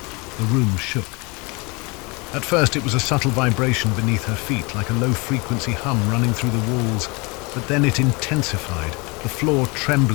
The room shook. At first it was a subtle vibration beneath her feet, like a low-frequency hum running through the walls, but then it intensified, the floor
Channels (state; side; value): quieter; right; 27.8 dB